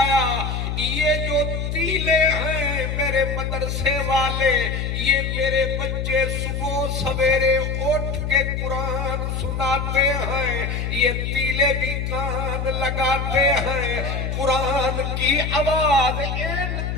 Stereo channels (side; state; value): left; noise; hum, 2 dB below the sound